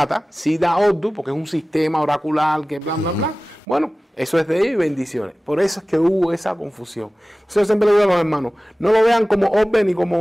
sí da Oddu, porque es un sistema oracular que bla, bla, bla. Bueno, eso es de ellos y bendiciones. Por eso es que hubo esa confusión. Entonces yo siempre le digo a los hermanos, no lo vean como Obbe ni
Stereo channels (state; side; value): normal; both; correlation 0.97